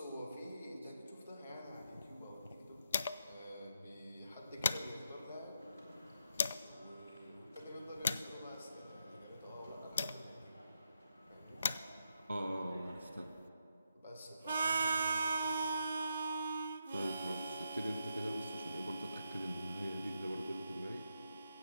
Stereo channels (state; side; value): inverted; both; correlation -0.82